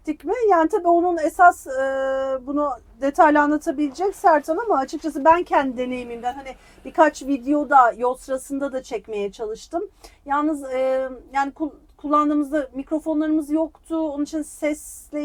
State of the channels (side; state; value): both; identical; correlation 1.00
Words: mi? Yani tabii onun esas bunu detaylı anlatabilecek Sertan ama açıkçası ben kendi deneyimimden hani birkaç videoda yol sırasında da çekmeye çalıştım. Yalnız yani kullandığımızda mikrofonlarımız yoktu. Onun için sesle